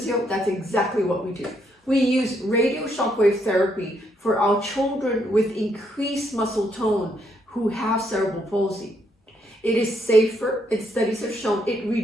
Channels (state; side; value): normal; both; correlation 0.74